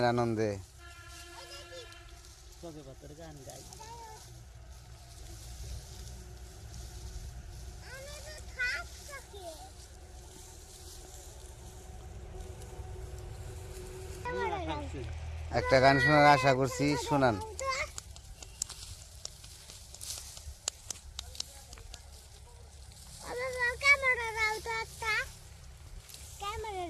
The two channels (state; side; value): identical; both; correlation 1.00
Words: আনন্দে। সবে বাতের গান গাই। একটা গান শোনার আশা করছি, শোনান।